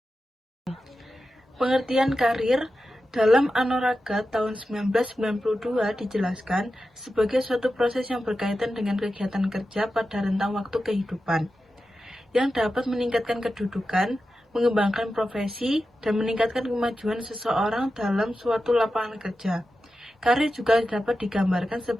Pengertian karir dalam Anoraga tahun 1992 dijelaskan sebagai suatu proses yang berkaitan dengan kegiatan kerja pada rentang waktu kehidupan yang dapat meningkatkan kedudukan, mengembangkan profesi, dan meningkatkan kemajuan seseorang dalam suatu lapangan kerja. Karir juga dapat digambarkan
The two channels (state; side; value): normal; both; correlation 0.91